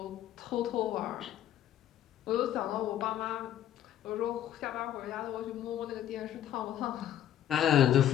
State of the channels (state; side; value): quieter; right; 11.3 dB